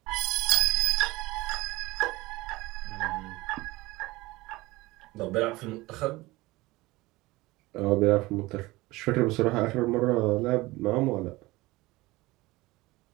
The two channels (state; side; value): quieter; left; 20.4 dB